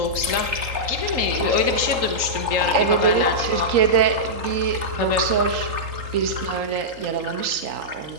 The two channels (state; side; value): late; left; 3.8 ms